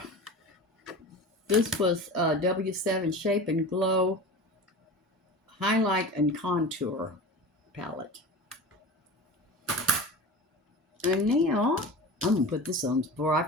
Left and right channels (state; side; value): normal; both; correlation 0.32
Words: this was W7 Shape and Glow Highlight and Contour palette. And now, I'm going to put this on before I